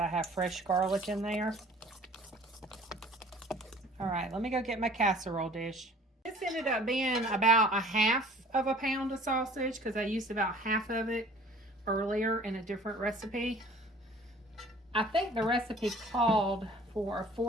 have fresh garlic in there. All right, let me go get my casserole dish. This ended up being about 1/2 pound of sausage because I used about half of it earlier in a different recipe. I think the recipe called for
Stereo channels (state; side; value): normal; both; correlation 0.50